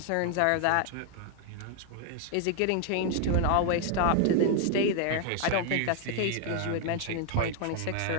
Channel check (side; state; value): both; different; correlation 0.00